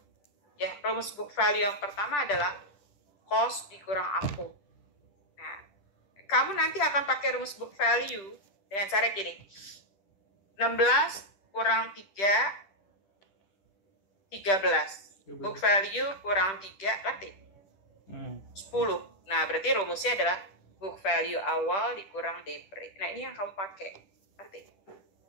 Ya, rumus book value yang pertama adalah cost dikurang akum. Nah, kamu nanti akan pakai rumus book value dengan cara gini. 16 kurang 3, 13. Book value kurang 3, berarti 10. Nah, berarti rumusnya adalah book value awal dikurang depre. Nah, ini yang kamu pakai. Berarti.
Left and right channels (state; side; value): late; right; 10 ms